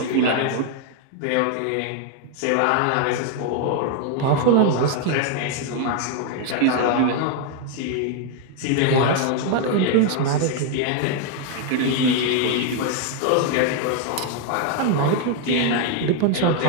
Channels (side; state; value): both; different; correlation 0.00